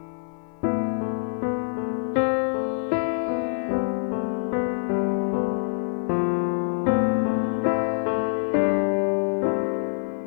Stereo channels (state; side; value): silent; right; 61 dB below the other